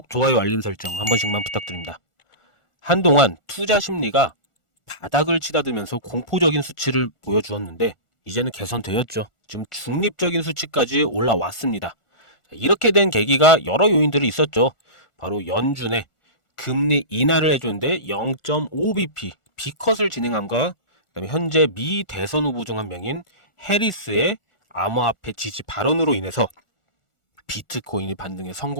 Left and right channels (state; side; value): late; right; 1.4 ms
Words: 좋아요, 알림 설정 한 번씩만 부탁드립니다. 한동안 투자 심리가 바닥을 치닫으면서 공포적인 수치를 보여주었는데 이제는 개선되었죠. 지금 중립적인 수치까지 올라왔습니다. 이렇게 된 계기가 여러 요인들이 있었죠. 바로 연준의 금리 인하를 해줬는데 0.5bp B컷을 진행함과 그다음에 현재 미 대선 후보 중 한 명인 해리스의 암호화폐 지지 발언으로 인해서 비트코인이 반등에